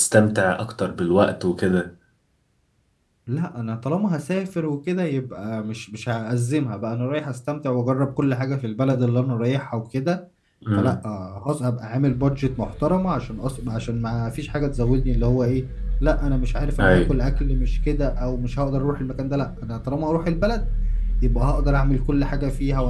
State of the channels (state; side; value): identical; both; correlation 1.00